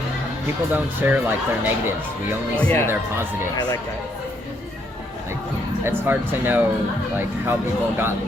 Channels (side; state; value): both; normal; correlation 0.72